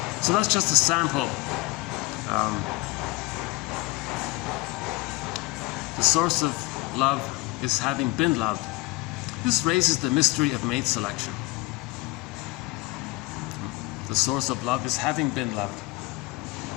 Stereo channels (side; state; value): right; quieter; 21.8 dB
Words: So that's just a sample. The source of love is having been loved. This raises the mystery of mate selection. The source of love is having been loved.